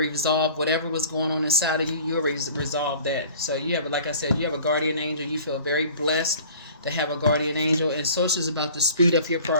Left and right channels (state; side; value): inverted; both; correlation -0.48